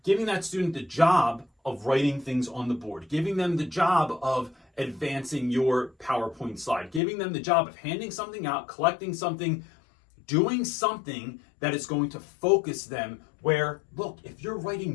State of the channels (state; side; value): drops out; right; at 7.0 s